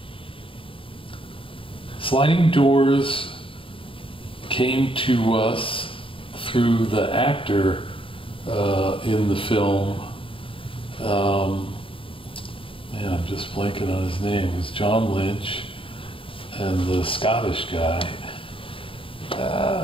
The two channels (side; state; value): right; late; 0.26 ms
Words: Sliding Doors came to us through the actor in the film. Man, I'm just blanking on his name. It was John Lynch and the Scottish guy.